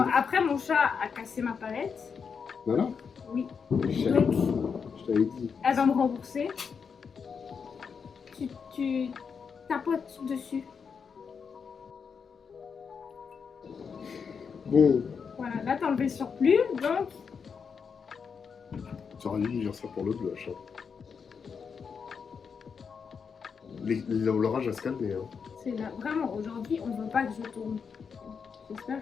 après, mon chat a cassé ma palette. Voilà. Oui. Je Donc, t'avais dit. elle va me rembourser. Tu tapotes dessus. Bon, Voilà, là, t'as enlevé le surplus. Donc, tu aurais dû me dire ça pour le blush. Hein. L'orage va se calmer. Hein. c'est là. Vraiment, aujourd'hui, on veut pas que je tourne.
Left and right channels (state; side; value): quieter; right; 6.1 dB